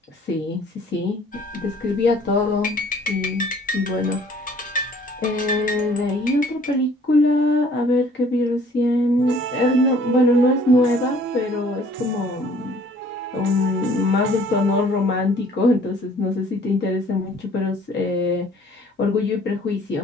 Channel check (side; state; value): both; normal; correlation 0.55